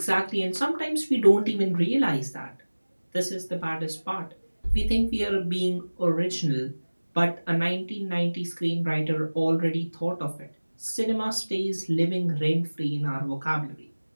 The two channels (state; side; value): inverted; both; correlation -1.00